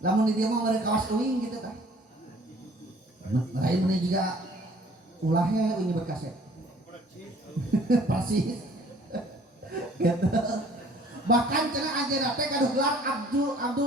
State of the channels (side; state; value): both; normal; correlation 0.55